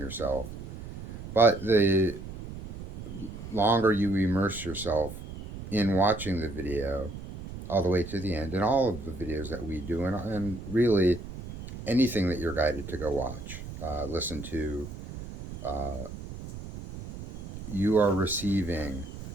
But the longer you immerse yourself in watching the video all the way to the end, and all of the videos that we do, and really anything that you're guided to go watch, listen to, you are receiving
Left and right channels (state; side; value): noise; right; rumble, 11 dB below the sound